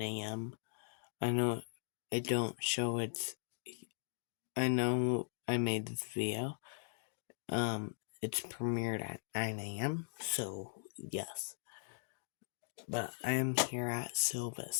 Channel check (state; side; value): silent; right; digital silence